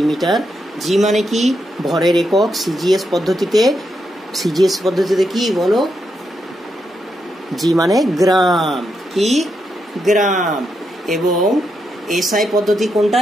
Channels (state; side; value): normal; both; correlation 0.82